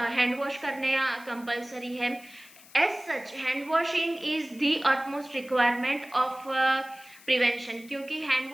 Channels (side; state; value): left; noise; hiss, 22 dB below the sound